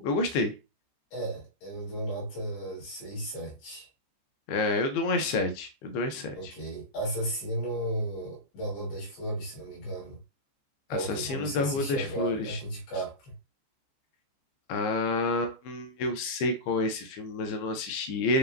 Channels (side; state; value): right; late; 15 ms